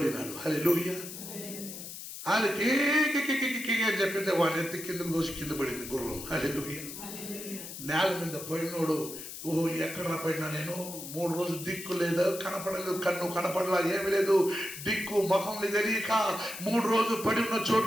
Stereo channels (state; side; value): noise; left; hiss, 10 dB below the sound